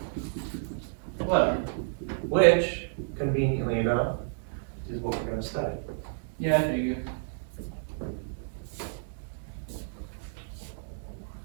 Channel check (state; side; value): silent; left; digital silence